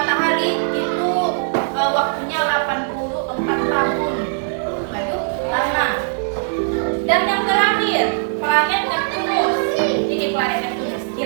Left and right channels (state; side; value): silent; left; digital silence